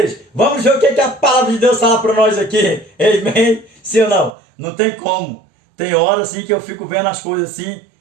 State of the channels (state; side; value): drops out; left; at 4.3 s